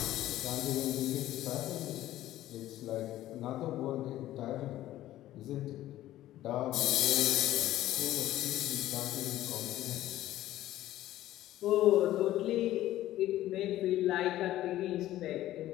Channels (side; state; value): right; quieter; 14.3 dB